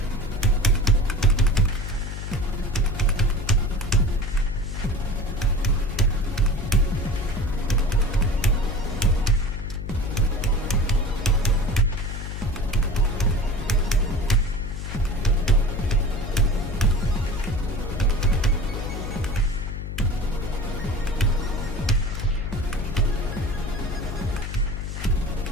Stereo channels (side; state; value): left; noise; hum, 6 dB below the sound